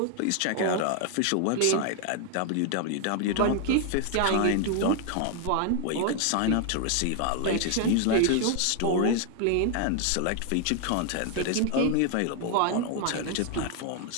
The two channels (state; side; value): different; both; correlation 0.00